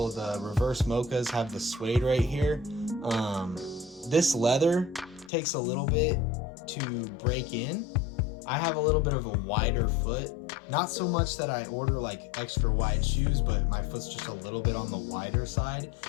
the reverse mochas have the suede right here. This leather takes a little bit to break in. I have a little bit of a wider foot. Not so much that I order like extra wide shoes, but my foot's just a little bit on the wider side.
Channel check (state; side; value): drops out; right; at 5.3 s